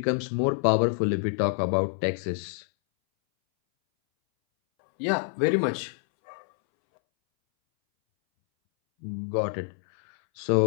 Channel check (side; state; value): right; silent; 61 dB below the other